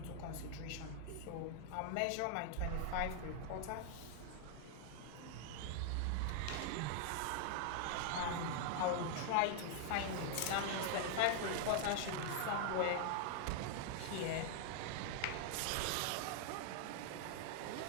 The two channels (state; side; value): different; both; correlation 0.00